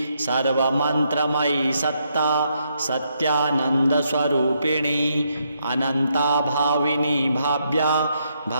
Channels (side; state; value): both; inverted; correlation -0.77